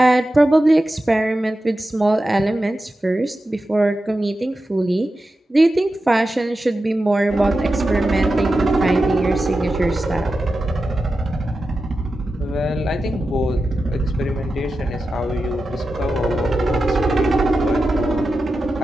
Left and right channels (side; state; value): both; normal; correlation 0.91